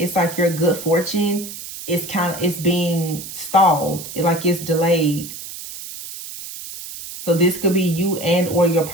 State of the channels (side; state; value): right; noise; hiss, 11 dB below the sound